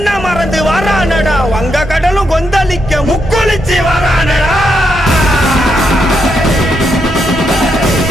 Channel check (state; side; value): normal; both; correlation 0.80